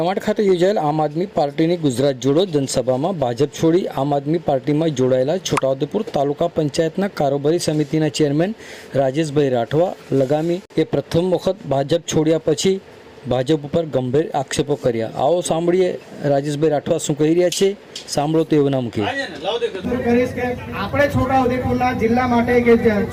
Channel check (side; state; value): both; identical; correlation 1.00